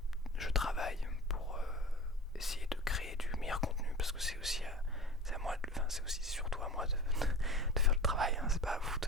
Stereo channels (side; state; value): both; normal; correlation 0.34